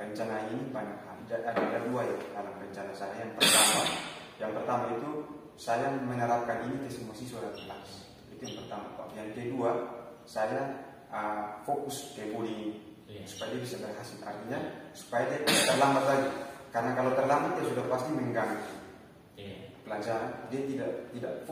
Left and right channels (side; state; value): both; identical; correlation 1.00